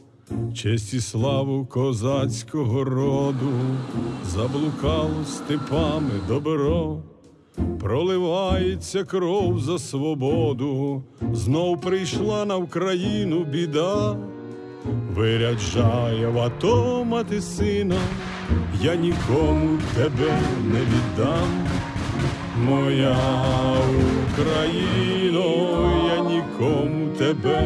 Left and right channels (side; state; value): both; identical; correlation 1.00